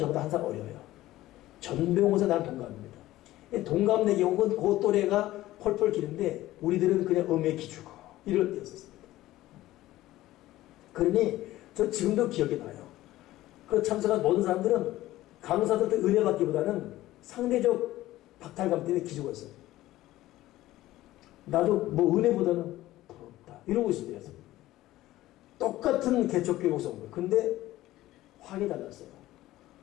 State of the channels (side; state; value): right; quieter; 15.9 dB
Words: 한 살 어려요. 전병호 목사 나는 동갑입니다. 동갑 경우는 그 또래가 펄펄 기는데 우리들은 그냥 음에 기주고 이럴 때였었습니다. 그러니 저 지금도 기억이 나요. 그 참석한 모든 사람들은 강사들도 은혜 받기보다는 상대적 박탈감 때문에 기죽어 있어요. 나도 뭐 은혜보다는 부럽다 이러고 있을 때였어요. 똑같은 개척교회 목사인 거예요. 근데 확이 달랐어요.